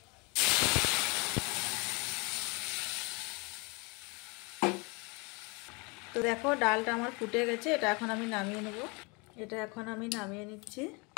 তো দেখো ডালটা আমার ফুটে গেছে, এটা এখন আমি নামিয়ে নেব। এটা এখন আমি নামিয়ে নিচ্ছি।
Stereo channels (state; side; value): quieter; right; 29.4 dB